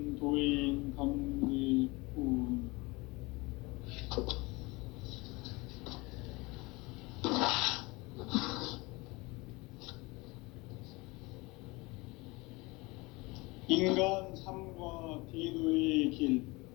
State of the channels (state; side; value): quieter; right; 24.0 dB